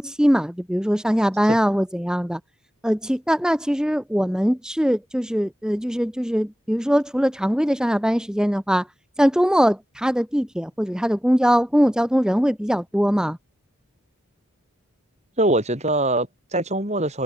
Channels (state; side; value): normal; both; correlation 0.90